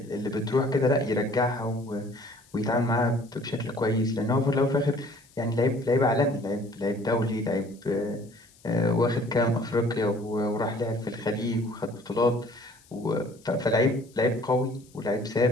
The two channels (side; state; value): left; noise; hiss, 28 dB below the sound